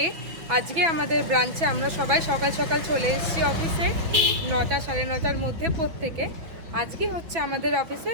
আজকে আমাদের ব্রাঞ্চে আমরা সবাই সকাল সকাল চলে এসেছি অফিসে, 9টা সাড়ে 9টার মধ্যে প্রত্যেকে। আজকে হচ্ছে আমাদের অফিসে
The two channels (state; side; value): late; left; 5.8 ms